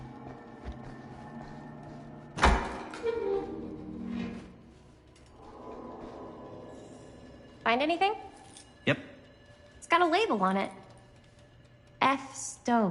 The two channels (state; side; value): identical; both; correlation 1.00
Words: Find anything? Yep. It's got a label on it. F.